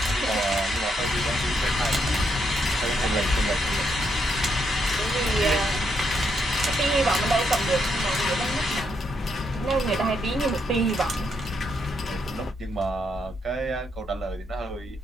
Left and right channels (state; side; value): normal; both; correlation 0.77